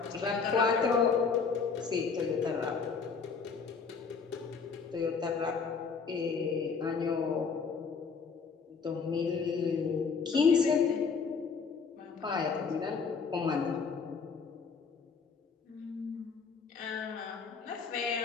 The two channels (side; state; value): right; quieter; 5.4 dB